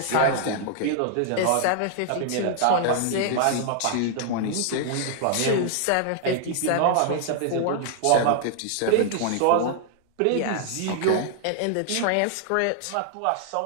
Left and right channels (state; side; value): different; both; correlation 0.00